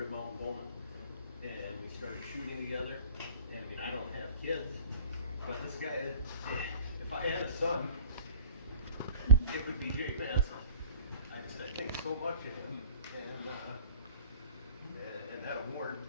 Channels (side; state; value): both; inverted; correlation -0.48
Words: Mountain Bowman, and we started shooting together. And I mean, I don't have kids, but this guy, if I had a son, it would be Jake Manson. I think so much of him, and that award,